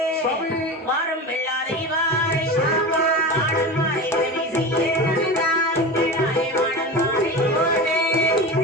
சுவாமி. வாரம் வெள்ளாதை வாரை மாடமாரை விரைவு செய்ய நாளை மாடமாரை ஓடே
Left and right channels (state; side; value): normal; both; correlation 0.27